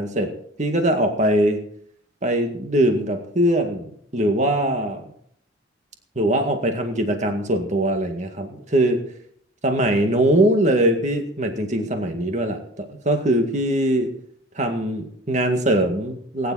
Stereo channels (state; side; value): normal; both; correlation 0.41